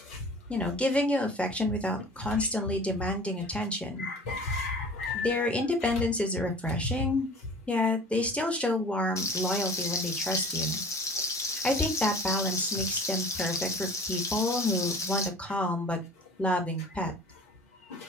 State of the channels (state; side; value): normal; both; correlation 0.43